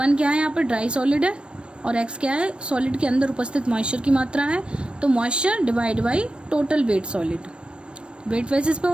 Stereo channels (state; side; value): late; left; 0.057 ms